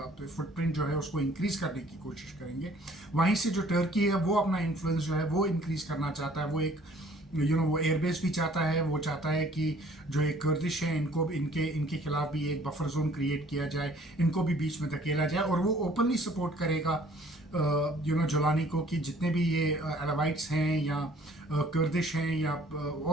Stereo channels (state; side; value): normal; both; correlation 0.56